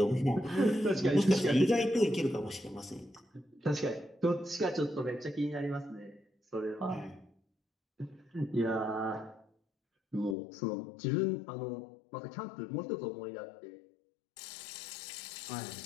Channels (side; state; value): right; drops out; at 10.4 s